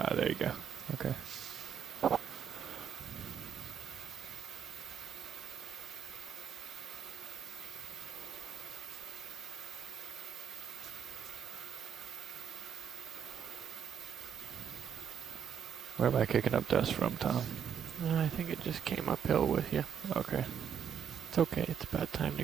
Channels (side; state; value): left; quieter; 8.2 dB